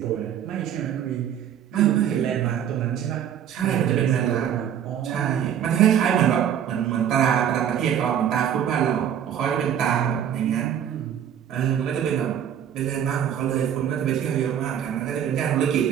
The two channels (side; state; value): left; quieter; 9.5 dB